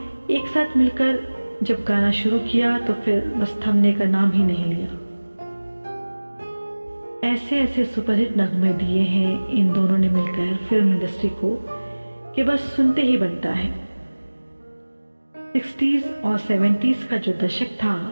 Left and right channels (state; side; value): inverted; both; correlation -1.00